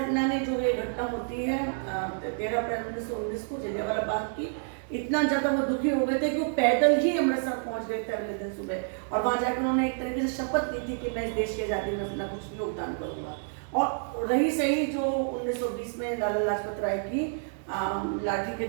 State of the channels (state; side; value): silent; left; digital silence